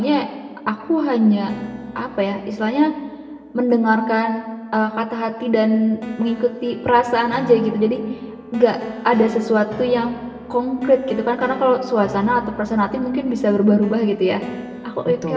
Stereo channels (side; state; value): both; identical; correlation 1.00